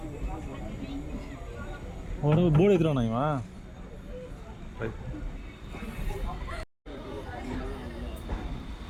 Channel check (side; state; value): both; identical; correlation 1.00